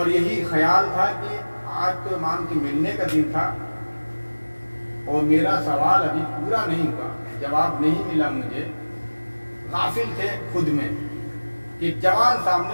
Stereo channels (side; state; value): both; inverted; correlation -1.00